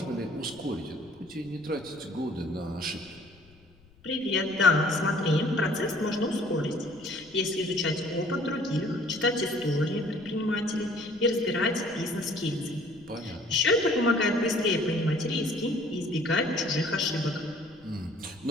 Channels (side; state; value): left; noise; rumble, 28 dB below the sound